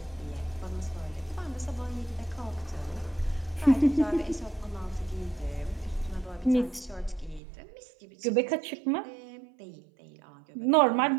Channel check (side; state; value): left; drops out; at 7.4 s